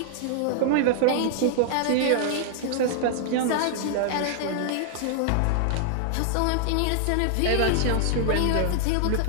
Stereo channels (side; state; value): both; different; correlation 0.00